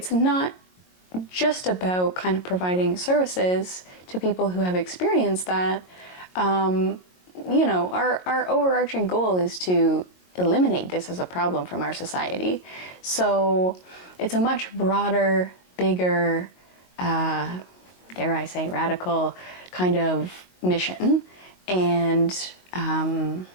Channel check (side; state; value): right; late; 22 ms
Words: not just about kind of providing services to people who have experienced that. Our overarching goal is to eliminate this as a problem from our society. So it's a much broader, bigger, dare I say, radical kind of mission. And